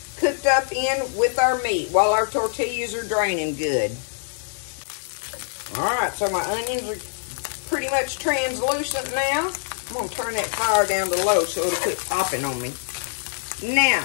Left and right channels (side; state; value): right; silent; 63 dB below the other